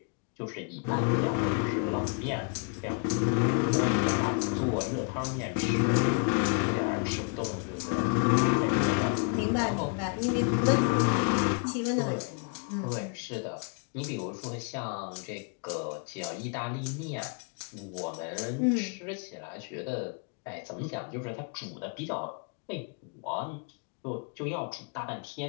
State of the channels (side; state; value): right; quieter; 35.8 dB